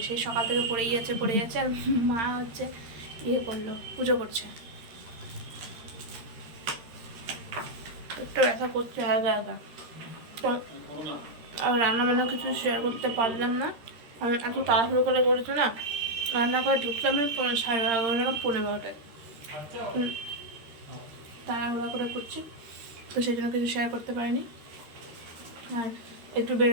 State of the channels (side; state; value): left; late; 13 ms